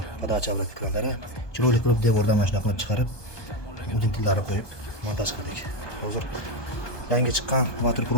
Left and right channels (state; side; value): late; right; 1.2 ms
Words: подача обратка kranlari. Chiroyli qilib devordan mana shunday qilib chiqarib, udintillarni qo'yib montaj qildik. Hozir yangi chiqqan Water